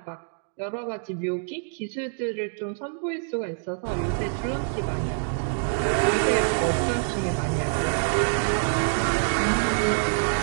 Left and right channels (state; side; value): silent; left; digital silence